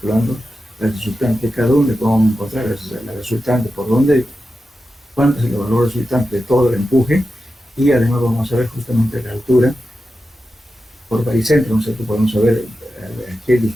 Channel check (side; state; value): both; normal; correlation 0.91